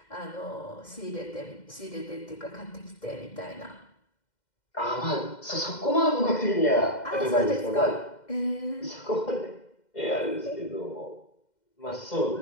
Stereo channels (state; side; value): late; right; 2.1 ms